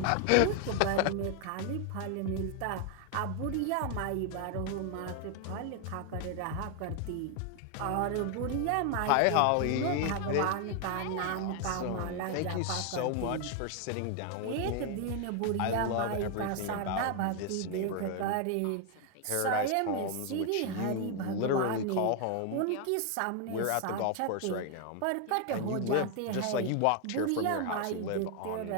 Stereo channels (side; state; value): both; different; correlation 0.00